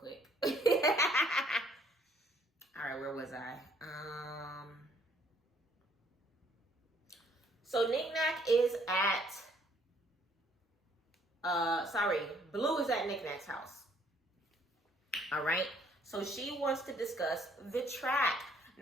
All right, where was I? So Nick Nack is at, Blue is at Nick Nack's house. All right. So she wants to discuss the track.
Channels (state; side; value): normal; both; correlation 0.64